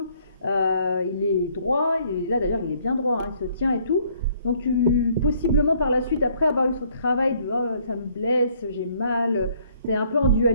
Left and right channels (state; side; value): inverted; both; correlation -0.64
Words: il est droit, et là d'ailleurs, il est bien droit, hein, il se tient et tout. Donc possiblement par la suite, après avoir eu ce travail de oh, ça me blesse, j'ai mal, tu es un peu en